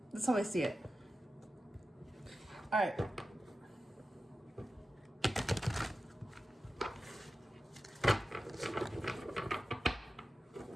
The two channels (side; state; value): both; normal; correlation 0.93